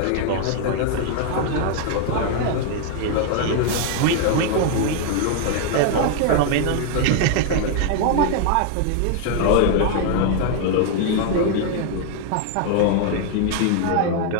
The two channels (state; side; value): different; both; correlation 0.00